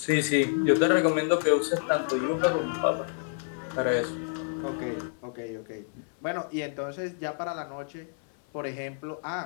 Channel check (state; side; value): silent; right; 59 dB below the other